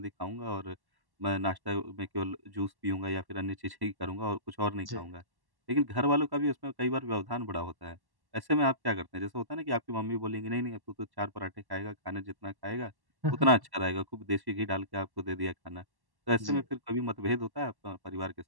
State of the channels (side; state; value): left; late; 1.1 ms